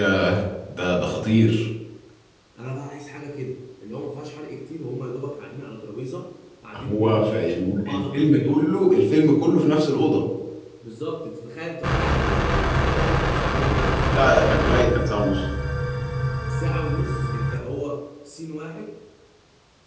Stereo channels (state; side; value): identical; both; correlation 1.00